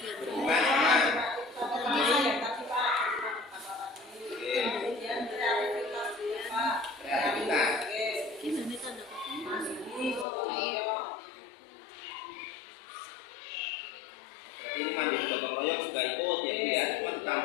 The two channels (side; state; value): right; drops out; at 10.2 s